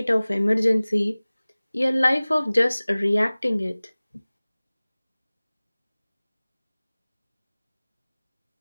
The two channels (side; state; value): both; inverted; correlation -0.99